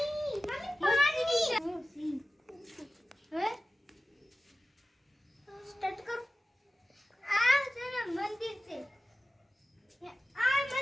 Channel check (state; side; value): normal; both; correlation 0.95